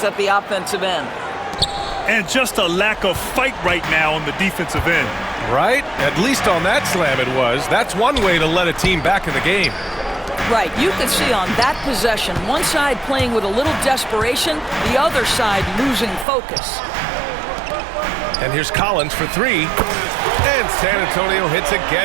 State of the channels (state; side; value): drops out; left; at 16.2 s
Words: at the offensive end. And just a lack of fight right now on the defensive end. Right? At least on that slam it was. That's one way to let a team back in the game. Right, you can see on that possession, one side playing with a little desperation, the other side losing focus. And here's Collins for 3. And San Antonio hits